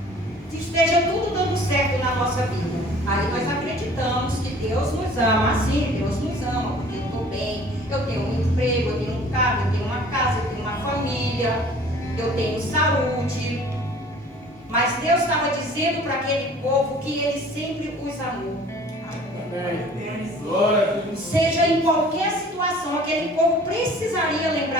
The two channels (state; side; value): normal; both; correlation 0.49